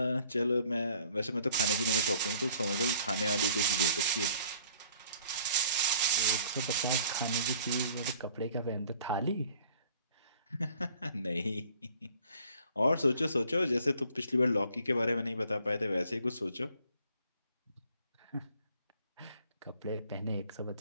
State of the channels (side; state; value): both; inverted; correlation -0.56